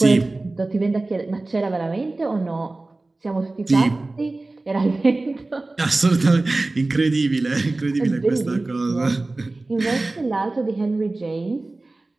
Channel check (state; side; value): quieter; left; 3.1 dB